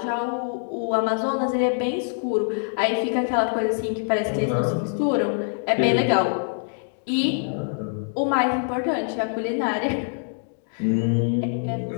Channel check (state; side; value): silent; right; digital silence